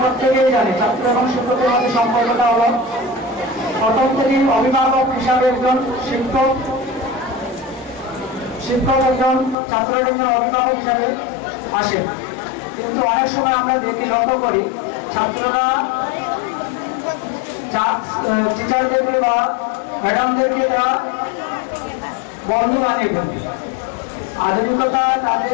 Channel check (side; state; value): right; drops out; at 9.6 s